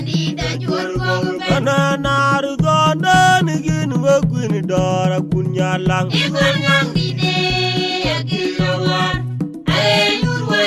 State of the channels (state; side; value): identical; both; correlation 1.00